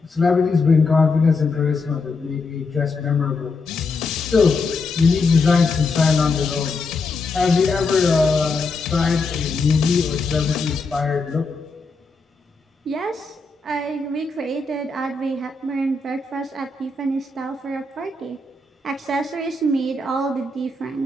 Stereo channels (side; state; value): right; quieter; 3.7 dB